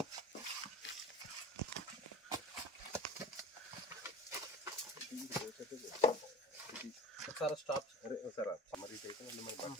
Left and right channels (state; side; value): normal; both; correlation 0.37